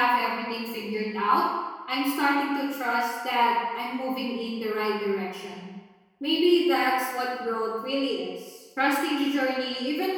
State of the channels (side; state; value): both; identical; correlation 1.00